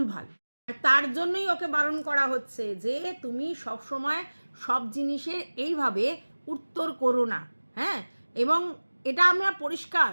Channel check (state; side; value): inverted; both; correlation -1.00